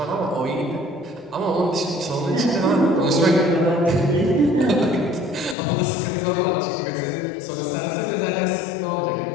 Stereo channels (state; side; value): drops out; right; at 5.6 s